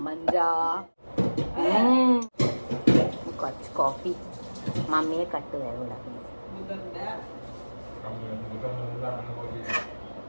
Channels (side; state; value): both; inverted; correlation -1.00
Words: കുറച്ച് കോഫി. മമ്മിയെ കട്ട് വേഗം